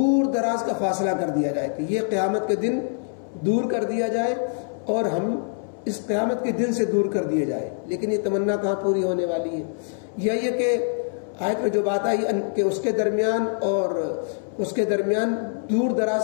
دراز کا فاصلہ کر دیا جائے, کہ یہ قیامت کے دن دور کر دیا جائے اور ہم اس قیامت کے دن سے دور کر دیے جائے. لیکن یہ تمنا کہاں پوری ہونے والی ہے؟ یا یہ کہ آیت میں جو بات آئی کہ اس کے درمیان اور اس کے درمیان دور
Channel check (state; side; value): silent; right; 62 dB below the other